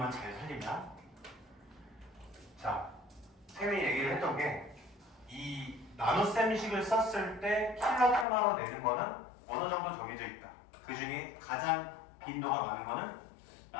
잘 살리면 자, 쌤이 얘기를 했던 게 이 나눗셈식을 썼을 때 킬로테마로 내는 거는 어느 정도 정해져 있다. 그 중에 가장 빈도가 많은 거는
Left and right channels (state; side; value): drops out; right; at 8.2 s